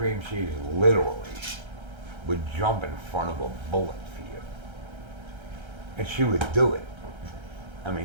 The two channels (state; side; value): late; left; 1.3 ms